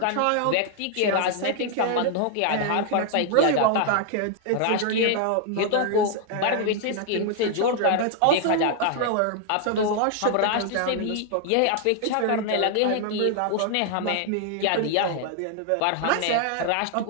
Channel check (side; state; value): both; different; correlation 0.00